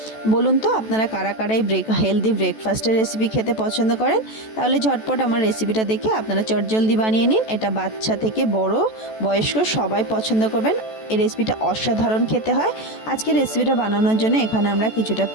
বলুন তো আপনারা কারা কারা এই হেলদি ব্রেকফাস্টের রেসিপি খেতে পছন্দ করেন? তাহলে ঝটপট আমার রেসিপিটা দেখে আপনারা চটজলদি বানিয়ে নিন। এটা বাচ্চা থেকে বড় বয়স্ক সবাই পছন্দ করবেন। এই রেসিপিটা অসাধারণ খেতে হয়। আজকে রেসিপিটা বানানোর জন্য এখানে আমরা কিছুটা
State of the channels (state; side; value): late; right; 14 ms